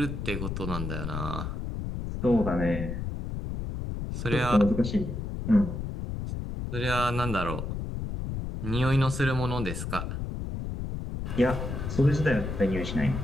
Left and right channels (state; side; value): noise; left; rumble, 4 dB below the sound